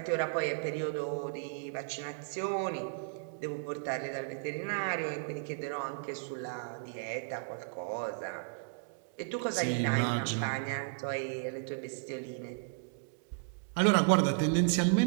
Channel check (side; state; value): left; silent; digital silence